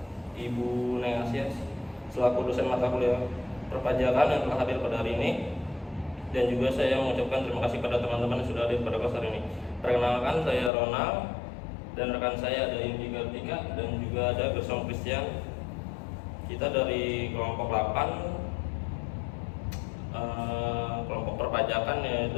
Ibu Neng Asia selaku dosen mata kuliah perpajakan yang telah hadir pada hari ini. Dan juga saya mengucapkan terima kasih pada teman-teman yang sudah hadir pada kelas hari ini. Perkenalkan, saya Ronald dan rekan saya ada Indi Gartika dan juga ada Gersom Christian. Kita dari kelompok 8 kelompok perpajakan,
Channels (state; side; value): drops out; right; at 10.7 s